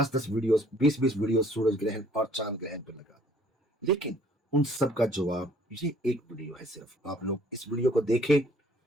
वीडियोस, 20-20 वीडियोस सूरज ग्रहण और चांद ग्रहण पर लगा दी। लेकिन उन सब का जवाब ये एक वीडियो है। सिर्फ आप लोग इस वीडियो को देखें,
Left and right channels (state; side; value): normal; both; correlation 0.59